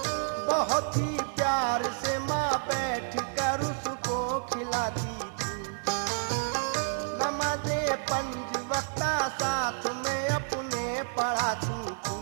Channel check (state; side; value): silent; left; 58 dB below the other